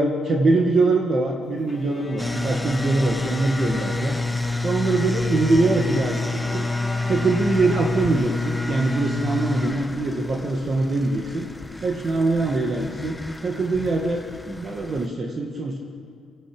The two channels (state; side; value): normal; both; correlation 0.84